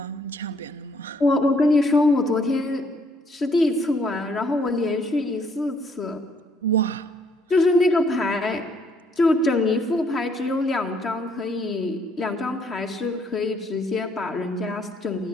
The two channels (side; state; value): both; normal; correlation 0.67